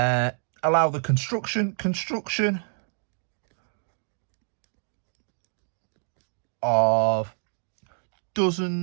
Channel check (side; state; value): left; silent; 57 dB below the other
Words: the construction of